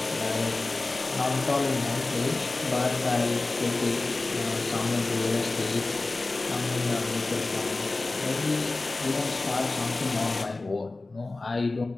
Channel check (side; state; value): right; quieter; 3.2 dB